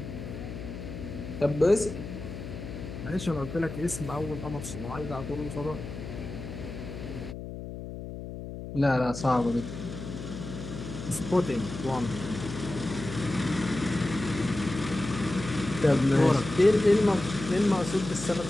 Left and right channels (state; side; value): noise; left; hum, 9 dB below the sound